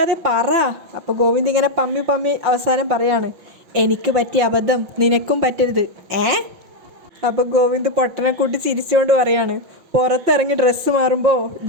പറ. അപ്പോൾ ഗോവിന്ദ് ഇങ്ങനെ പമ്മി അവസാനം പറയാണ്, എനിക്ക് പറ്റിയ അബദ്ധം നിനക്കും പറ്റരുത്. അപ്പോൾ ഗോവിന്ദ് പൊട്ടനെ കൂട്ടി ചിരിച്ചുകൊണ്ട് പറയാണ്, പുറത്തിറങ്ങി ഡ്രസ്സ് മാറുമ്പോൾ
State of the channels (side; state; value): left; late; 5.9 ms